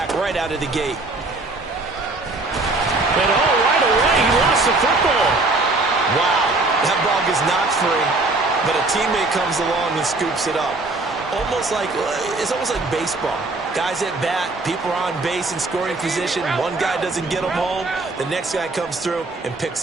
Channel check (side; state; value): left; quieter; 3.2 dB